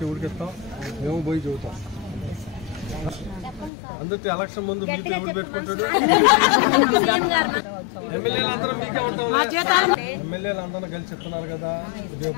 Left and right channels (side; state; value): right; drops out; at 3.7 s